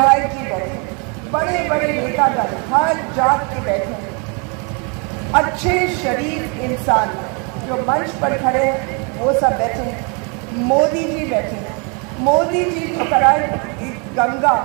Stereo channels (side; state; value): left; quieter; 34.4 dB